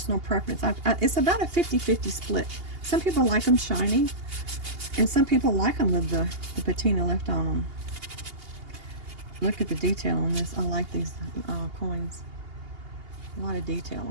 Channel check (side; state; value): left; late; 2.8 ms